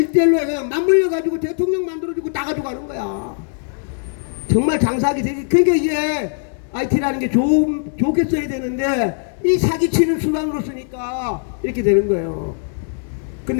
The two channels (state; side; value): silent; right; 63 dB below the other